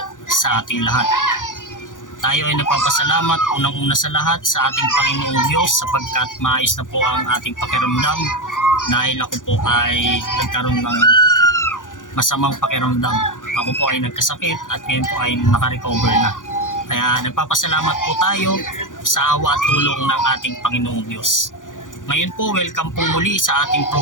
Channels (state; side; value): late; right; 0.88 ms